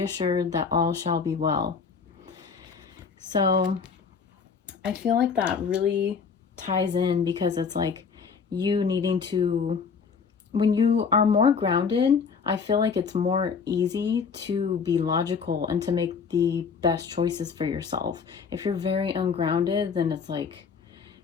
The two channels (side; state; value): right; quieter; 5.7 dB